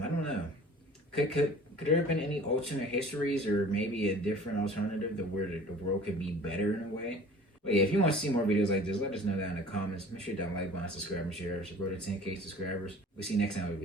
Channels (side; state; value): both; normal; correlation 0.46